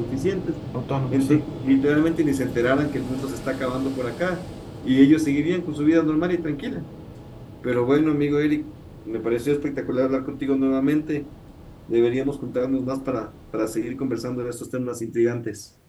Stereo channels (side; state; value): both; identical; correlation 1.00